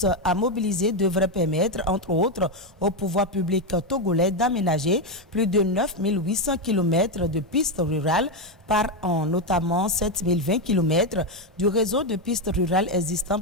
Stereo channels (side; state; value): both; normal; correlation 0.07